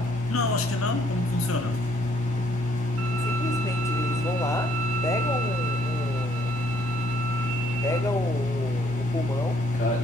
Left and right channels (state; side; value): normal; both; correlation 0.66